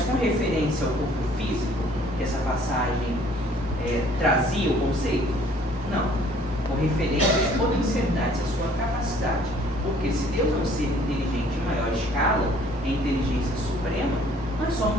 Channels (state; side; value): normal; both; correlation 0.57